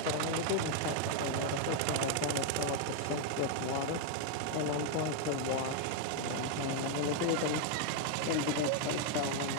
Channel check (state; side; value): different; both; correlation 0.00